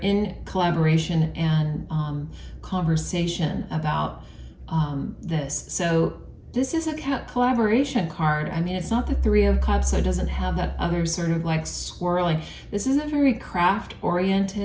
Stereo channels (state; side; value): identical; both; correlation 1.00